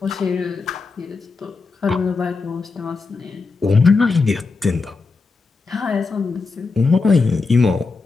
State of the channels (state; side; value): quieter; right; 4.3 dB